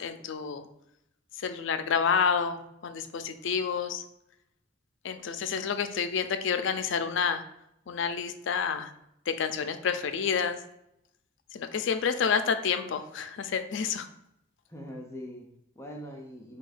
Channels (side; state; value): right; quieter; 6.0 dB